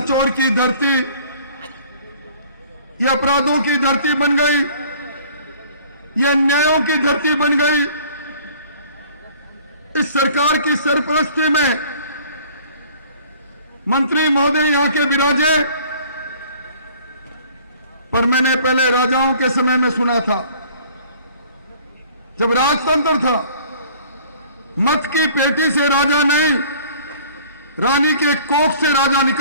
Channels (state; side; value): inverted; both; correlation -0.52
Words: की धरती ये अपराधों की धरती बन गई, ये अन्यायों की धरती बन गई। इस सरकार की सरपरस्ती में मंत्री महोदय यहां के विराजे, पर मैंने पहले राजाओं के समय में सुना था, जब राजतंत्र था, मत की पेटी से राजा नहीं, रानी के कोख से राजा